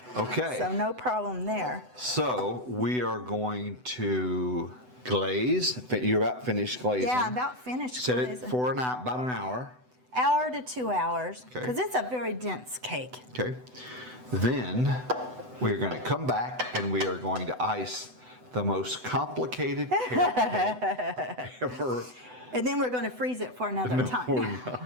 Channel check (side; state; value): left; late; 8.0 ms